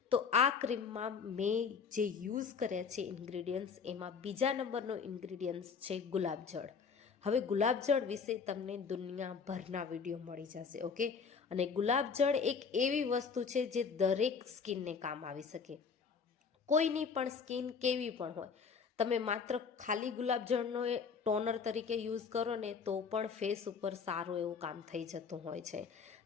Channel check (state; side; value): quieter; right; 5.8 dB